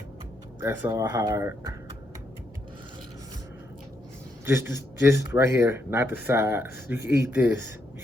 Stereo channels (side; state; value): both; normal; correlation 0.78